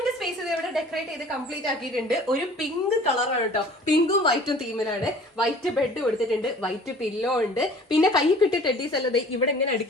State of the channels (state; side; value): normal; both; correlation 0.48